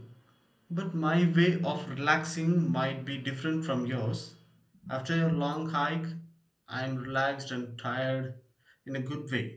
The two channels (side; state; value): both; identical; correlation 1.00